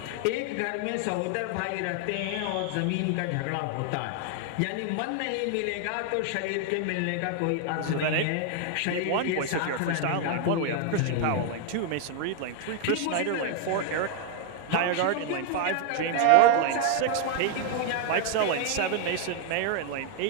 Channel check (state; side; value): different; both; correlation 0.00